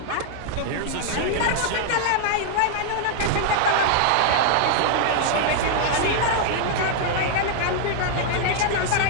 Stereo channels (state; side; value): different; both; correlation 0.00